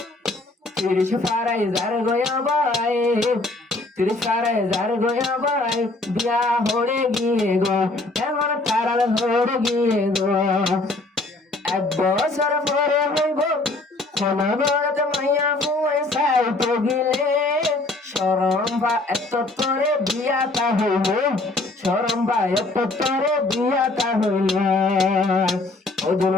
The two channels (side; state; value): right; quieter; 3.0 dB